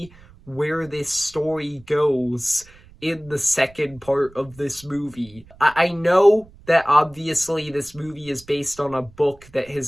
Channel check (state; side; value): noise; right; rumble, 24 dB below the sound